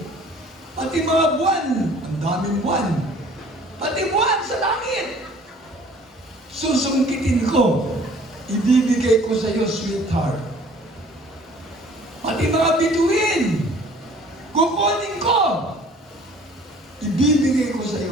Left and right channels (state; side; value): normal; both; correlation 0.53